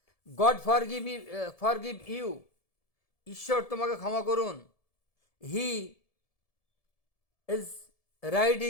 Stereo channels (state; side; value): late; right; 1.7 ms